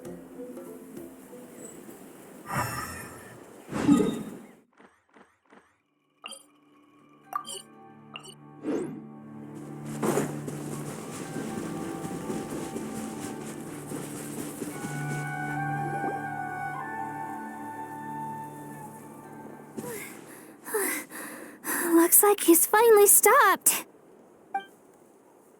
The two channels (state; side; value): identical; both; correlation 1.00